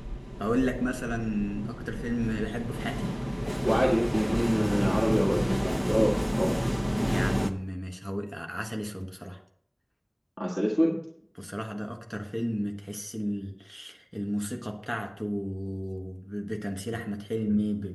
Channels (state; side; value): identical; both; correlation 1.00